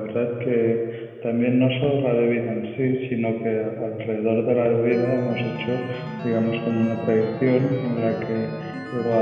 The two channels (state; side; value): identical; both; correlation 1.00